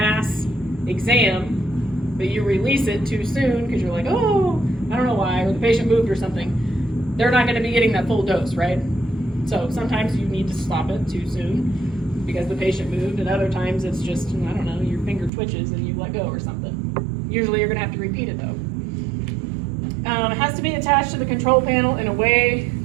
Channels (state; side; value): drops out; left; at 15.3 s